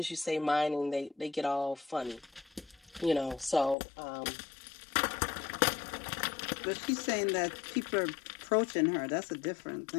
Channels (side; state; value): right; drops out; at 3.8 s